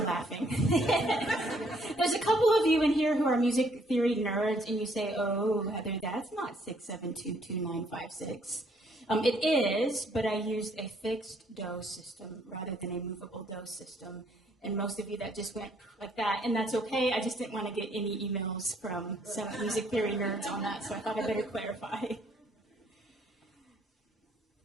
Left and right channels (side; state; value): both; normal; correlation 0.66